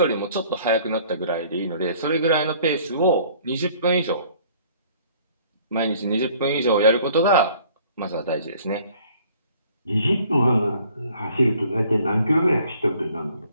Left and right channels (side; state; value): both; inverted; correlation -0.56